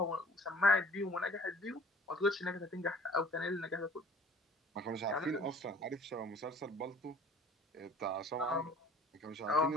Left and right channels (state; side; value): normal; both; correlation 0.50